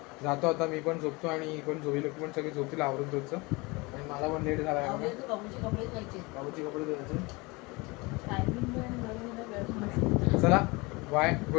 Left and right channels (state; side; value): quieter; right; 25.4 dB